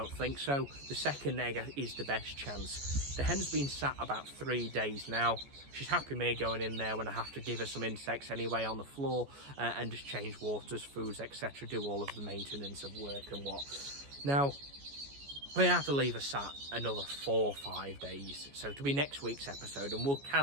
think so. The second egg is the best chance. The hen's been sat about 3 days now. She's happy me going in there when I have to give her some insects anyway on the floor, and just change waters, foods, etc. Do all of the maintenance of work and what. Now, we have to leave her sat another 4 or 5 days. So it'll be next week's episode, and we'll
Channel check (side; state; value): left; late; 14 ms